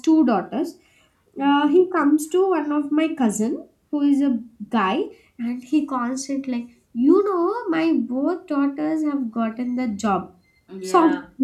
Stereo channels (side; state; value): both; identical; correlation 1.00